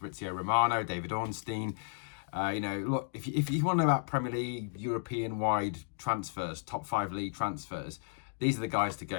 Romano, David Ornstein. Look, if you want to know about Premier League, European-wide transfers, top 5 league transfers, these are the guys to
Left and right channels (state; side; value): silent; right; digital silence